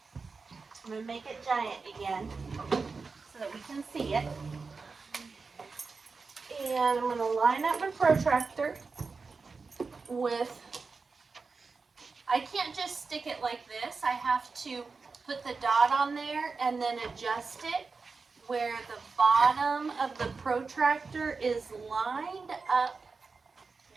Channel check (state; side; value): quieter; left; 4.5 dB